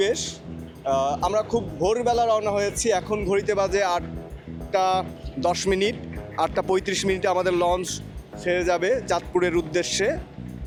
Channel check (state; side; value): identical; both; correlation 1.00